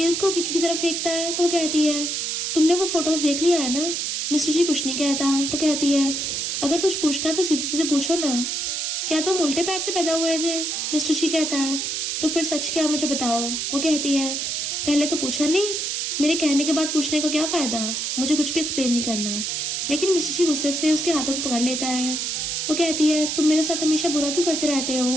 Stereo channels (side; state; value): right; noise; hiss, 1 dB below the sound